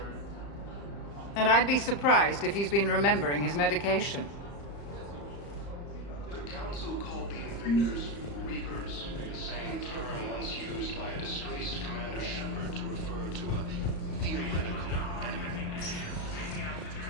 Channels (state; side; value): late; right; 35 ms